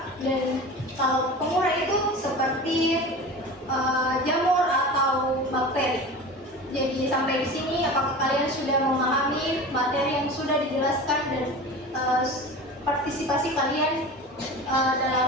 dan kalau pengurai itu seperti jamur atau bakteri. Jadi sampai di sini, apakah kalian sudah memahami materi yang sudah dijelaskan dan partisipasi kalian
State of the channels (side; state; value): both; normal; correlation 0.34